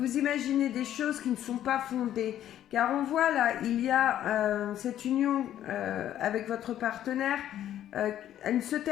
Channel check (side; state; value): right; quieter; 11.5 dB